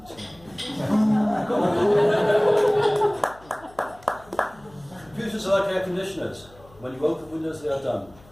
Computers are like air conditioners. When you open Windows, they are done.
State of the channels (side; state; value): left; noise; hum, 25 dB below the sound